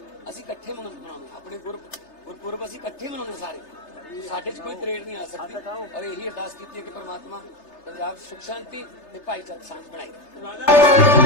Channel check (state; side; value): late; right; 3.3 ms